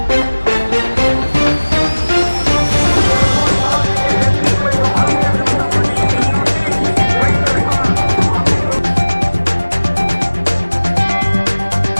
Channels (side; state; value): both; inverted; correlation -1.00